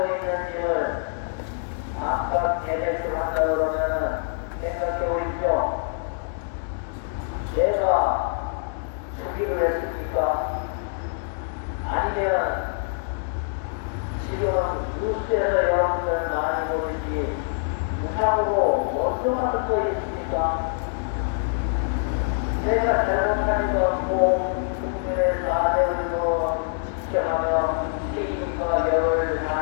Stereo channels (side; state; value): right; silent; digital silence